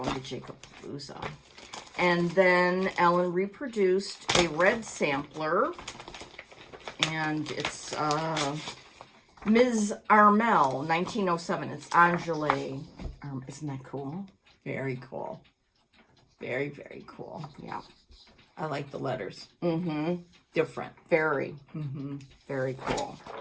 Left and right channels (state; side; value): identical; both; correlation 1.00